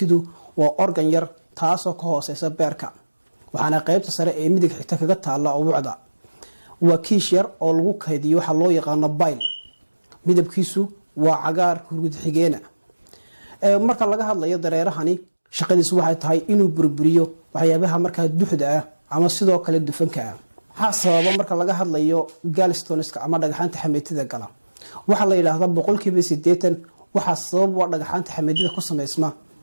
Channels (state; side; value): inverted; both; correlation -1.00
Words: waa organ yar taasoo ka hooseysa beerka waxaana qaybta sare ee midig xigta kaga taala ubucda waa kiish yar oo lagu kaydiyo waxa loo yaqaan bile midabkiisu waa cagaar hurgud xigeena marka laga hadlayo dareerahani shaqadiisu waxay tahay inuu burburiyo waxyaabaha markaa duxda ah ama sidoo kale dufanka ah waxa sababa marka laga hadlayo gallstones-ka ama dhagaxaanta xameetida gala waxa la yiraahdaa 80% waxa sabab waa dhagaxaanta xameetida ku sameysma